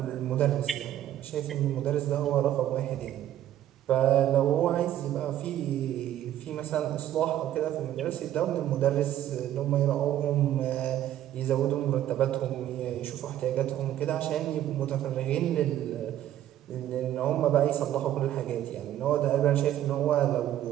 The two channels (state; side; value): quieter; left; 12.2 dB